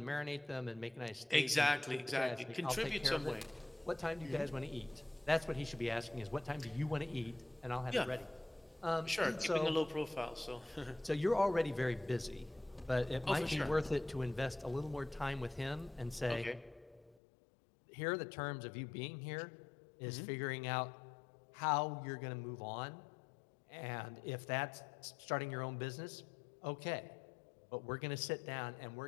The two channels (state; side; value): drops out; right; at 17.2 s